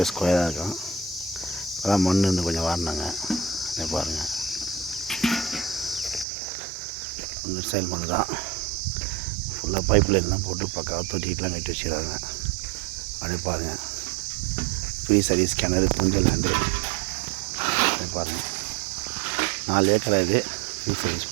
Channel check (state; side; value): drops out; left; at 6.2 s